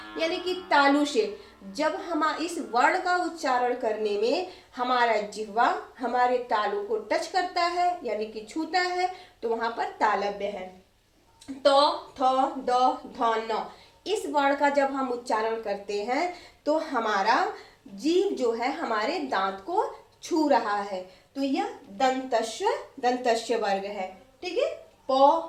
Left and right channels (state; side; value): identical; both; correlation 1.00